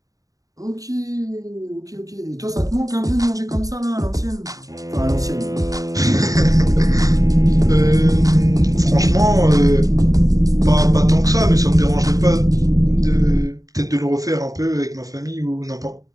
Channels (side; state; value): left; late; 0.17 ms